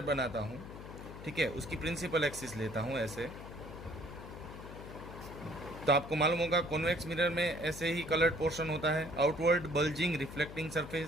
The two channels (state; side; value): noise; left; hum, 12 dB below the sound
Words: बनाता हूँ, ठीक है, उसकी प्रिंसिपल एक्सिस लेता हूँ ऐसे, तो आपको मालूम होगा कॉन्वेक्स मिरर में ऐसे ही कलर्ड पोर्शन होता है, आउटवर्ड बल्जिंग रिफ्लेक्टिंग